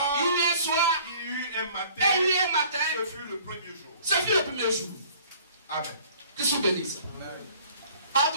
il y eut un soir, il y eut un matin, et il y eut un matin. ce fut le premier jour. Ce fut le premier jour. Amen. Que je bénisse. Ah,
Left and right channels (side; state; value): both; inverted; correlation -0.52